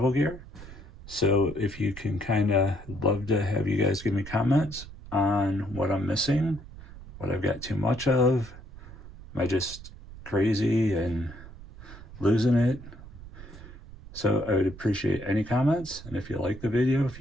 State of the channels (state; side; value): noise; right; rumble, 16 dB below the sound